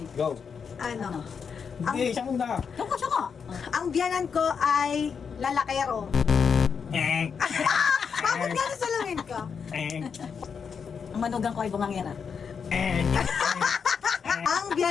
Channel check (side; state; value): right; quieter; 6.3 dB